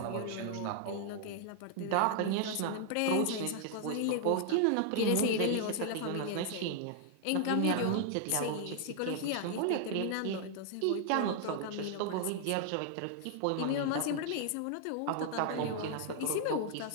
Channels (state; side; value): different; both; correlation 0.00